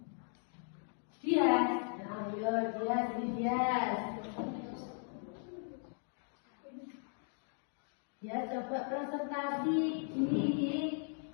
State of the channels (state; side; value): silent; right; 53 dB below the other